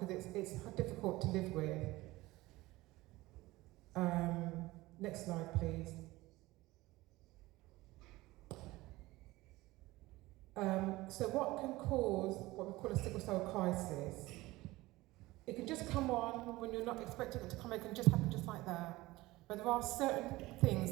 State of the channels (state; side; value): quieter; left; 19.4 dB